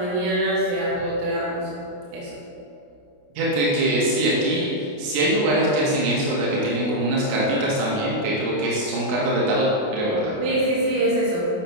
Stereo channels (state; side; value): late; left; 28 ms